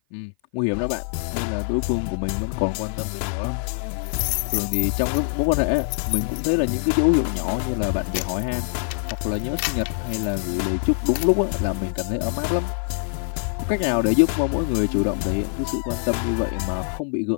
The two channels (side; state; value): right; silent; 55 dB below the other